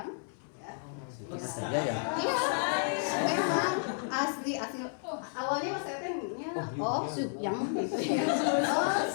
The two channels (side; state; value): right; silent; 56 dB below the other